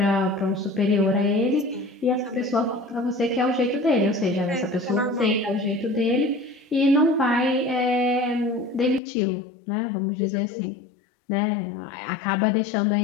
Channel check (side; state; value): right; drops out; at 9.0 s